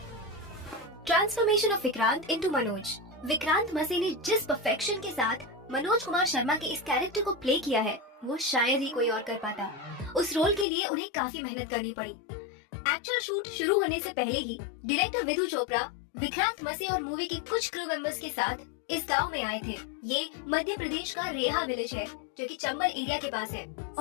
Transformation of Vikrant into Manoj. Vikrant मसे ने जिस परफेक्शन के साथ मनोज कुमार शर्मा के इस कैरेक्टर को प्ले किया है वो शायद ही कोई और कर पाता। उस रोल के लिए उन्हें काफी मेहनत करनी पड़ी। एक्चुअल शूट शुरू होने से पहले ही डायरेक्टर विधु चोपड़ा विक्रांत मसे और मूवी के कुछ क्रू मेंबर्स के साथ इस गांव में आए थे। ये मध्य प्रदेश का रेहा विलेज है जो कि चंबल एरिया के पास है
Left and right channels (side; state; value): right; drops out; at 10.7 s